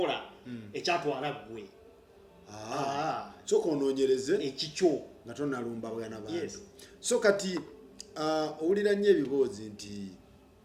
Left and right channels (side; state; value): both; identical; correlation 1.00